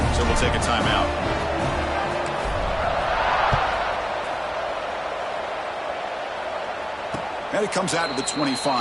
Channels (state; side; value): identical; both; correlation 1.00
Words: so we'll take a timeout. And it comes out to the